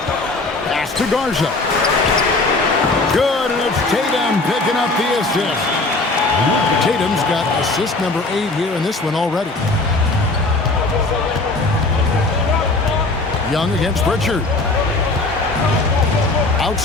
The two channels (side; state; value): right; quieter; 3.2 dB